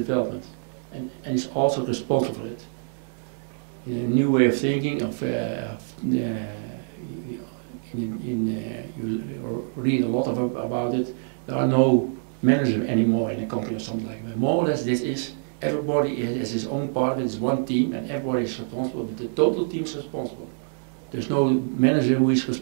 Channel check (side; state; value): left; silent; digital silence